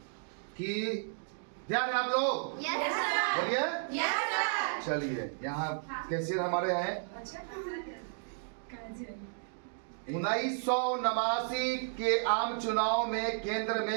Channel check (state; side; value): silent; left; digital silence